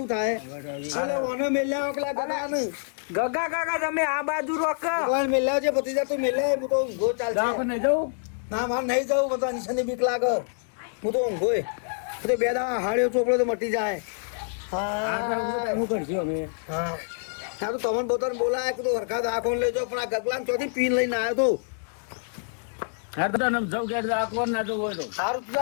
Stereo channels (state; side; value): silent; right; digital silence